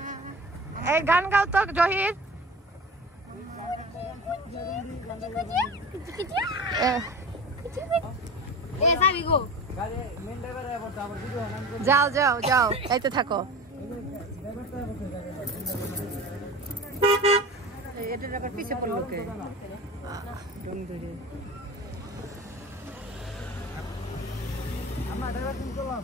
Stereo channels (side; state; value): both; normal; correlation 0.35